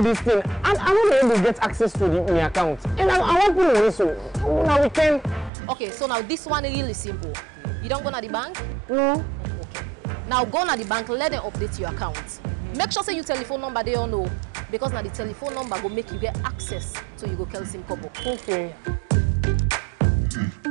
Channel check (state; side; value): drops out; left; at 5.5 s